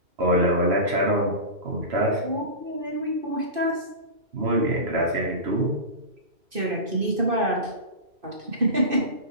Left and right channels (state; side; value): late; left; 2.6 ms